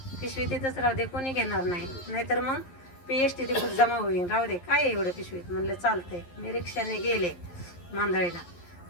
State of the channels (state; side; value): late; right; 11 ms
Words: पिशवी तिथंच राहू दे, कोणी घेणार नाही, नाहीतर मग एसटी तिथं जमा होईल, राहू दे, काय एवढं पिशवीत. म्हणलं चालतंय. मी रिक्षाने गेले मांदळीला.